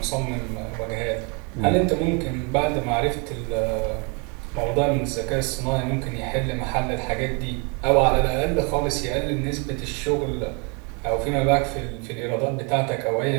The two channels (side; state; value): left; quieter; 33.5 dB